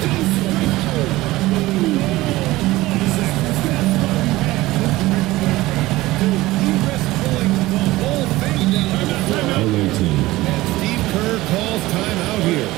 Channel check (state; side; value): quieter; left; 18.3 dB